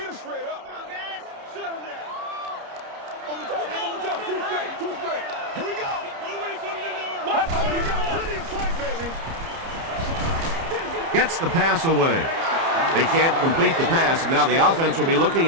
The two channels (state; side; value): late; left; 30 ms